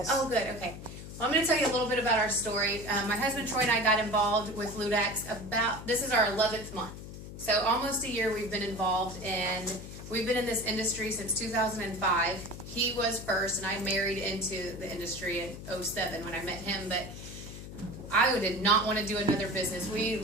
Oh, good. Okay. Well, I'm going to tell you a little bit about our story. My husband Troy and I got involved with Ludaxx this is our 11th month. So almost a year we've been involved, and we've been in this industry since 2005. He was first, and I married into the industry in 2007 when I met him, but I did not want to do another business. We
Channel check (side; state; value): left; noise; hum, 12 dB below the sound